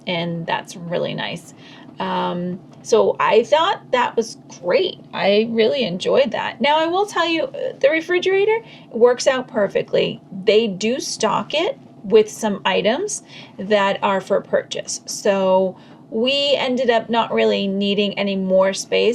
and that's really nice. So I thought that was great. I really enjoyed that. Now I will tell you, the refrigerator works out perfectly. They do stock it with some items that are for purchase. So we ended up not really needing any more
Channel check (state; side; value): identical; both; correlation 1.00